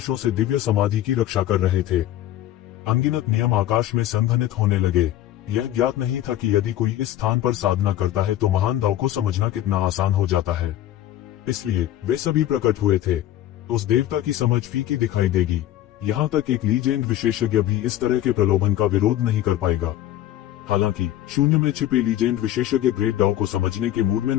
से दिव्य समाधि की रक्षा कर रहे थे। अनगिनत नियम आकाश में संघनित होने लगे। यह ज्ञात नहीं था कि यदि कोई इस स्थान पर साधना करता है तो महान दाव को समझना कितना आसान हो जाता है। इसलिए वे सभी प्रकट हुए थे। उस देवता की समझ फीकी दिखाई देगी। यहाँ तक एक लीजेंड विशेषज्ञ भी इस तरह के प्रलोभन का विरोध नहीं कर पाएगा। हालांकि शून्य में छिपे लीजेंड विशेषज्ञ ग्रेट दाव को समझने के मूड में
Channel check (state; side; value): quieter; right; 12.9 dB